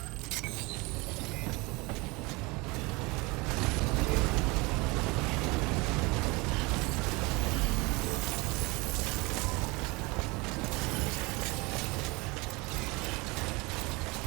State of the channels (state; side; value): quieter; left; 25.2 dB